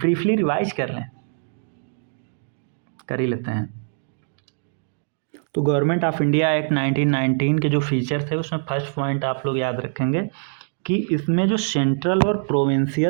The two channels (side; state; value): left; silent; digital silence